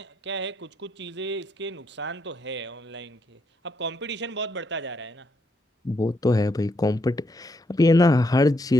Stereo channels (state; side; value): normal; both; correlation 0.77